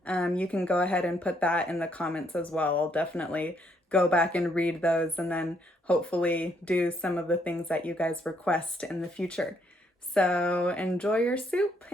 you can go ahead and put that in the comments as well. I'll definitely go back and read those and then hopefully do some of the things that you guys request in the future. So enjoy your soup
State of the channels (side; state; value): both; normal; correlation 0.71